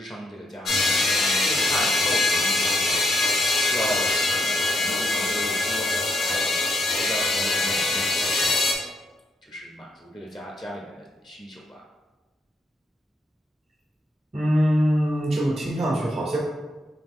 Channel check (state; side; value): normal; both; correlation 0.78